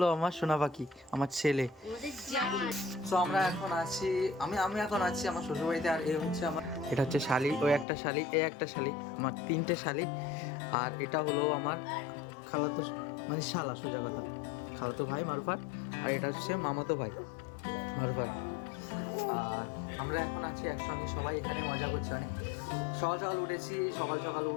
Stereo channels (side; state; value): right; drops out; at 7.9 s